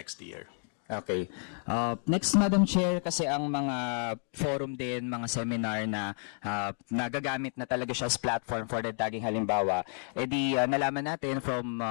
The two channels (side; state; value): right; silent; 57 dB below the other